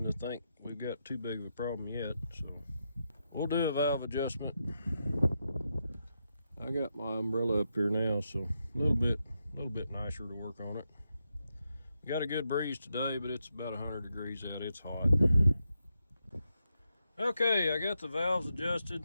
to think we've got too big of a problem yet. So we'll do a valve adjustment. I got my umbrella up here now, so a little bit nicer to work on it. We got a good breeze today, but it's about 100 degrees out. It's hot. Okay, I got the valves adjusted.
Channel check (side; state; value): both; inverted; correlation -0.85